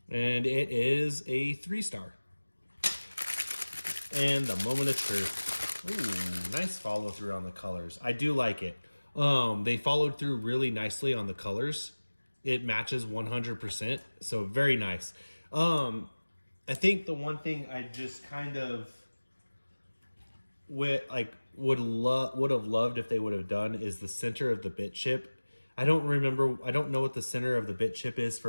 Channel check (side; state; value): both; inverted; correlation -1.00